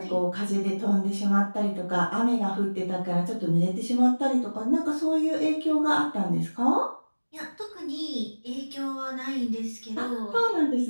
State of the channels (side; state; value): both; inverted; correlation -1.00